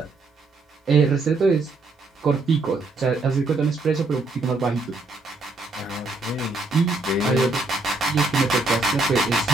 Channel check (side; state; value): left; quieter; 3.3 dB